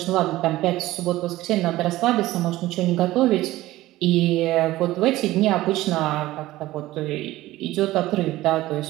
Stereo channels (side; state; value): left; quieter; 16.7 dB